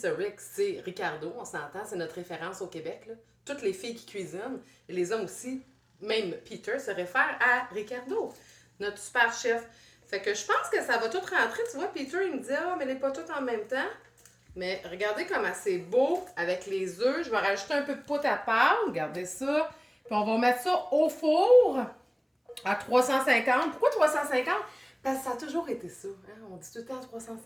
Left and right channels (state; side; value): identical; both; correlation 1.00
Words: Rick? C'est Ricardo, on s'entend. C'est notre référence au Québec, là. Toutes les filles qui cuisinent, et les hommes aussi, même Peter, se réfèrent à Ricardo, notre super chef. Fait que je pense que ça va tout rentrer. Tu vois, Peter, il me dit « Ah, mais elle n'est pas toutes en même temps. » Mais regardez comment c'est beau avec les œufs. Je vais rajouter un peu de poudre à pâte. Regardez ça. Puis on va mettre ça au four à 350. Pourquoi 350? Parce que ça a toujours été ça. Hein? On dit tout le temps